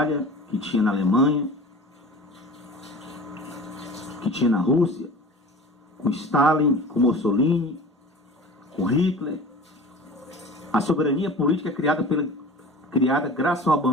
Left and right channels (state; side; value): normal; both; correlation 0.38